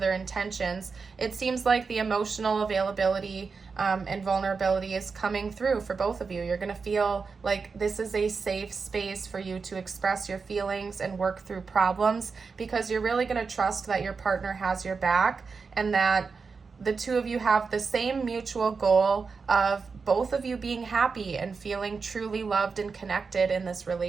intentions. It seems like the emotional availability and vulnerability is coming through for both of you. You're going to feel like this is a safe space for you to express your feelings and work through problems, because you're really going to trust that your partner has your back and that the two of you have the same mutual goal of both of you being happy and feeling truly loved and connected in this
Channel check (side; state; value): left; quieter; 4.9 dB